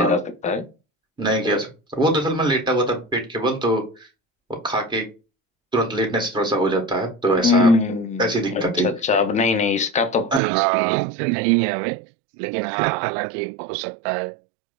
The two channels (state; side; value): drops out; left; at 10.4 s